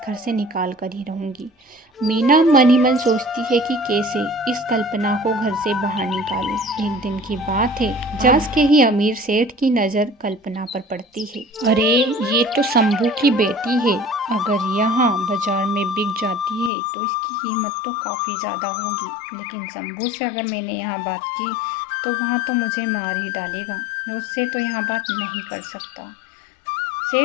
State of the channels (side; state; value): right; drops out; at 16.7 s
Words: घर से निकाल कर ही रहूँगी। मीना मन ही मन सोचती है कि कैसे इस कल्पना को घर से बाहर निकालूं। एक दिन की बात है, जब के ही अमीर सेठ की नज़र कल्पना पर पड़ती है। अरे ये तो शंभू की बेटी है, अगर यहाँ बाजार में बिक जाती है तो इसकी कीमत तो काफ़ी ज़्यादा होगी, लेकिन शंभू से अगर मैंने यहाँ बात की तो वहाँ तो मुझे मार ही डालेगा, मैं उससे तो यहाँ बात नहीं कर सकता।